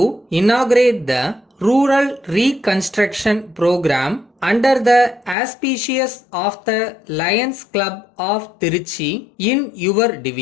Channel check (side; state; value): right; drops out; at 5.4 s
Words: inaugurate the Rural Reconstruction Program under the auspices of the Lions Club of Tiruchi in your